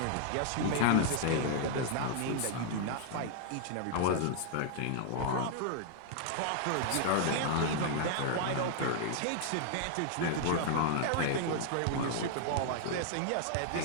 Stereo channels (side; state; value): both; different; correlation 0.00